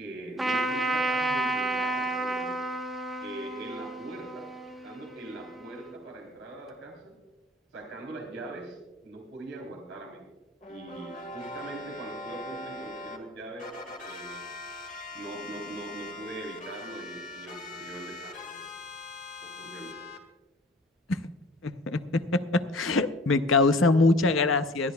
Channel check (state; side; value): normal; both; correlation 0.48